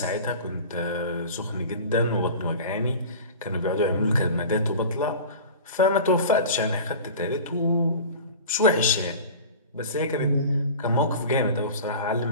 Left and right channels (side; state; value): both; inverted; correlation -0.37